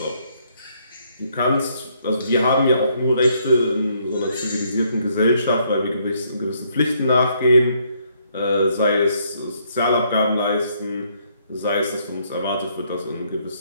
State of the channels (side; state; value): both; inverted; correlation -0.70